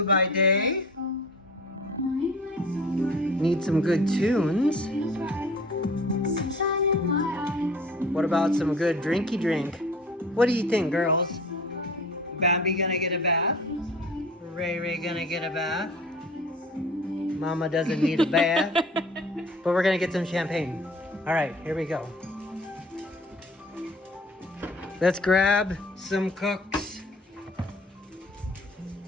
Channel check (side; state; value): both; normal; correlation 0.46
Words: by day. Need some good tunes. What about some good drinky drink? What do you think, girls? Bambi gonna get a bath? Ray gonna get a bath? Mama doesn't need a bath. But we're gonna get some champagne. Alright, here we go. Let's grab some cooks.